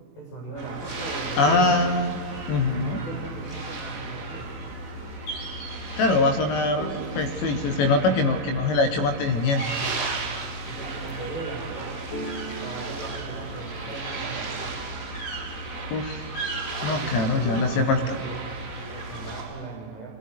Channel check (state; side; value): late; right; 18 ms